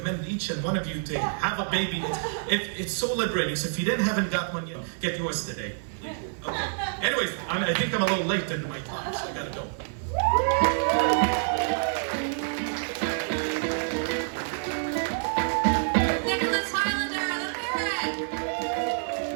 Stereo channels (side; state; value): left; silent; 60 dB below the other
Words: each and one of you to have a baby. It's so liberating. So if you haven't got one yet, get yours today. Okay. Anyways, I think I'm a little late into my talk, so I gotta go.